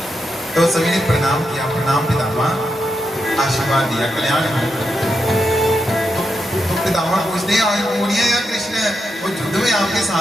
तो सभी ने प्रणाम किया, प्रणाम पितामह, आशीर्वाद दिया, कल्याण हो। तो पितामह पूछते हैं आज कौन है या कृष्ण? वो युद्ध में आपके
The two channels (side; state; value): both; normal; correlation 0.85